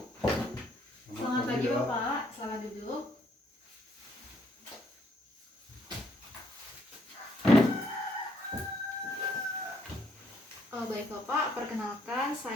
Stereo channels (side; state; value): both; normal; correlation 0.69